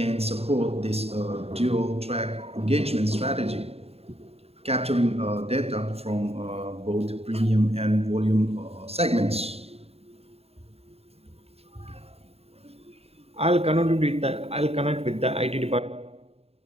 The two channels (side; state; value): left; late; 0.29 ms